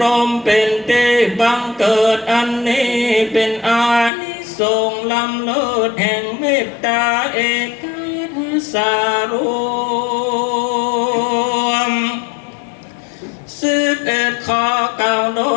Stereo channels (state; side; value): drops out; right; at 4.1 s